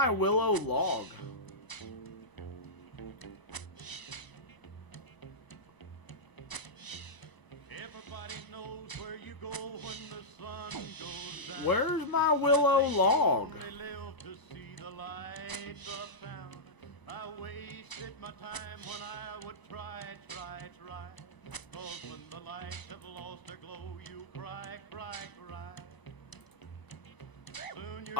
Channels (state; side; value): late; right; 1.0 ms